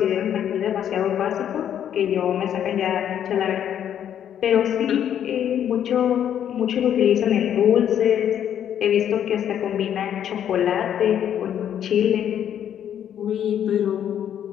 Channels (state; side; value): quieter; right; 9.7 dB